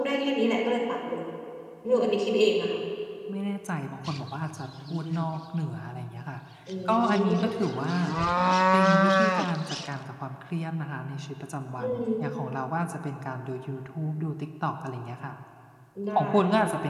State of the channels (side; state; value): both; identical; correlation 1.00